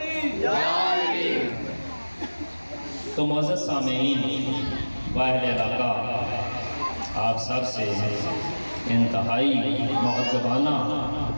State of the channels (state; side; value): inverted; both; correlation -1.00